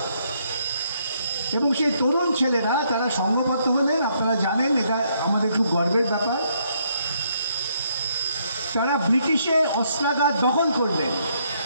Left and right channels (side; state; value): both; inverted; correlation -0.72